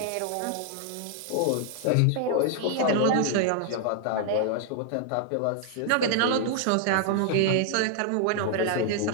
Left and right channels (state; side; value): different; both; correlation 0.00